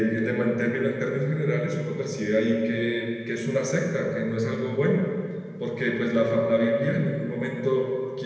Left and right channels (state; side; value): identical; both; correlation 1.00